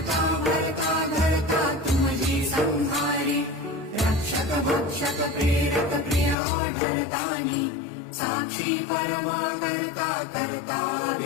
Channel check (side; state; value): right; drops out; at 6.4 s